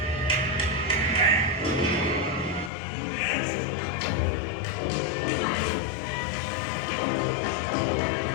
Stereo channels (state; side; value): drops out; right; at 2.7 s